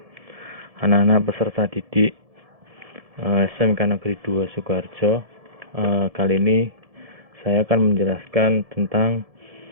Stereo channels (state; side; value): late; left; 1.7 ms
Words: Anak-anak peserta didik SMK Negeri 2 Sukoharjo. Kali ini saya akan menjelaskan tentang